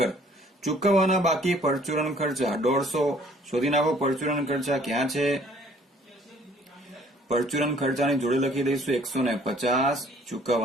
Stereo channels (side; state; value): both; normal; correlation 0.57